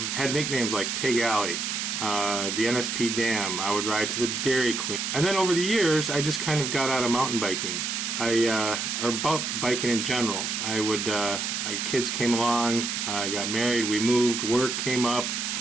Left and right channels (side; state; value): right; noise; hiss, 2 dB below the sound